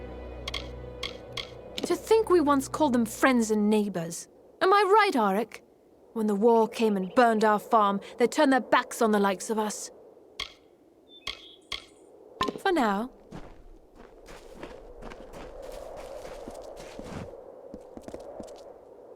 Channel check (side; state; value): both; identical; correlation 1.00